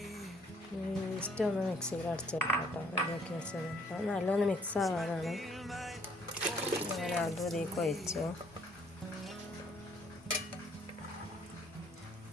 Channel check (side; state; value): both; normal; correlation 0.63